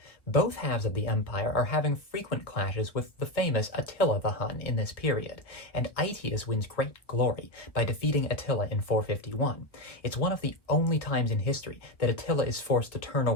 Both halves of the empire are having frequent clashes with the famous Attila the Hun in this period, and Aetius wins great glory by defeating Attila in 451. It's one of the only times in history that Attila is forced to turn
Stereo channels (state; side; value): late; right; 1.2 ms